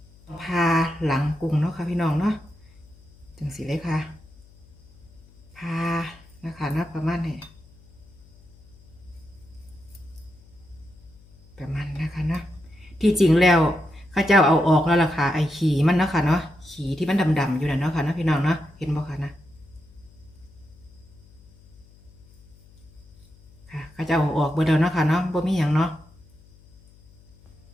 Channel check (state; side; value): noise; left; hum, 26 dB below the sound